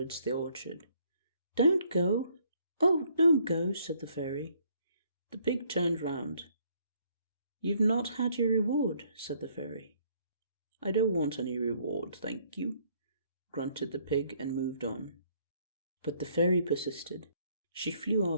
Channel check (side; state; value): both; inverted; correlation -0.66